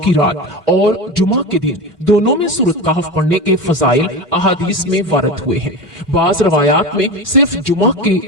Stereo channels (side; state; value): both; normal; correlation 0.25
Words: رات اور جمعہ کے دن دونوں میں سورت کہف پڑھنے کے فضائل احادیث میں وارد ہوئے ہیں۔ بعض روایات میں صرف جمعہ کی